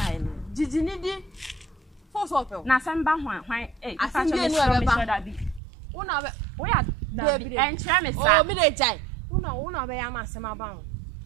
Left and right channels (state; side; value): drops out; left; at 5.6 s